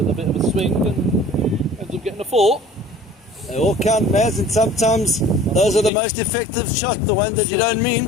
a bit of a swing and ends up getting a 4. They all count, Maz, and sometimes those are the most effective shots, the ones that you don't mean.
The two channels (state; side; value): drops out; right; at 5.9 s